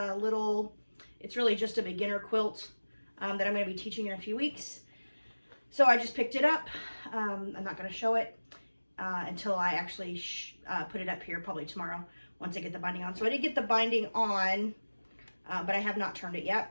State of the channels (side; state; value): both; inverted; correlation -1.00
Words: little, it's really just a beginner quilt that I'm going to be teaching in a few weeks. So I just picked it up. I'm not going to show it until I actually put it up here, probably tomorrow, once I get the binding on. So I did get the binding on, but I have not turned it yet.